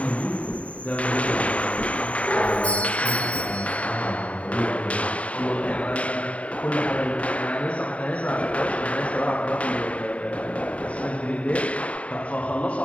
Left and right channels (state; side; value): late; right; 0.066 ms